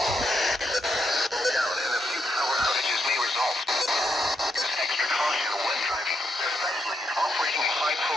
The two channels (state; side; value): normal; both; correlation 0.80